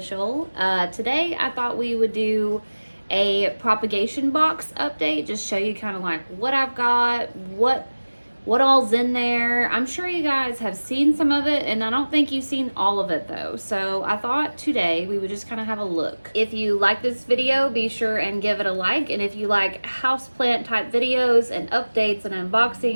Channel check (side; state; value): both; inverted; correlation -1.00